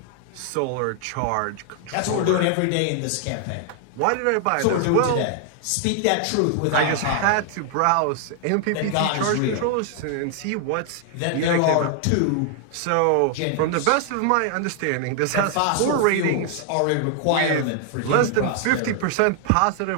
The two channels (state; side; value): different; both; correlation 0.00